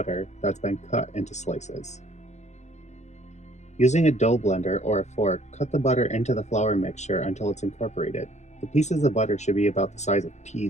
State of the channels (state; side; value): late; right; 0.33 ms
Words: that's been cut into slices. Using a dough blender or a fork, cut the butter into the flour mixture until it's incorporated. The pieces of butter should be about the size of